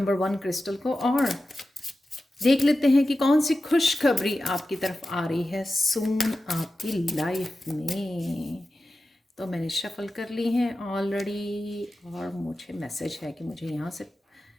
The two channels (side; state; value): both; normal; correlation 0.93